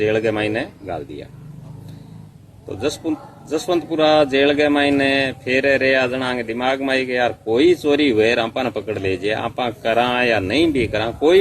के मायने गाल दिया। तो जसवंतपुरा जेल के मायने फिर रे जना के दिमाग में आई कि यार कोई चोरी हुए आपा ने पकड़ लीजिए, आपा करा या नहीं भी करा,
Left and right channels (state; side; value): identical; both; correlation 1.00